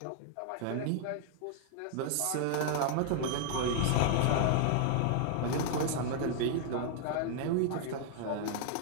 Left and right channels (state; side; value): different; both; correlation 0.00